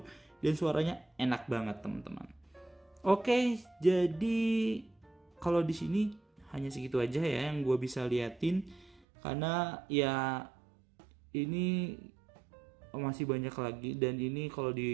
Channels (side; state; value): left; drops out; at 9.0 s